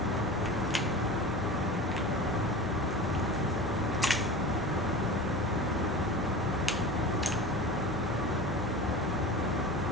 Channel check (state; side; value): normal; both; correlation 0.32